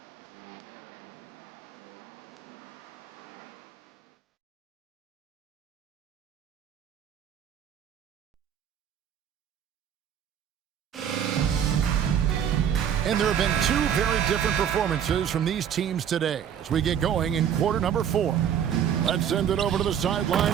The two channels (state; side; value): quieter; left; 8.9 dB